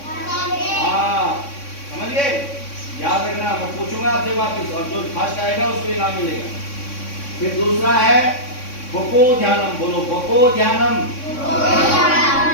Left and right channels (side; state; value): right; late; 3.6 ms